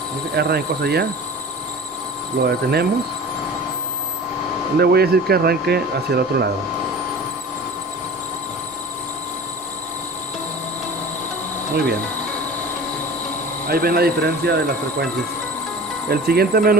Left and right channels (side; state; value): both; normal; correlation 0.38